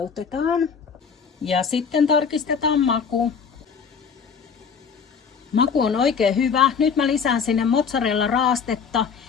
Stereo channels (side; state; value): right; quieter; 6.2 dB